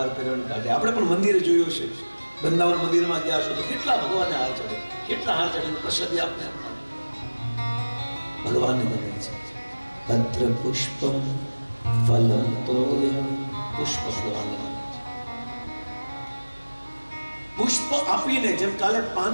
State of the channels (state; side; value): inverted; both; correlation -1.00